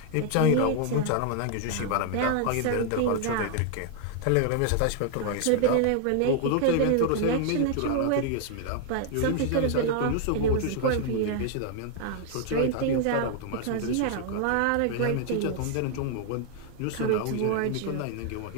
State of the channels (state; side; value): different; both; correlation 0.00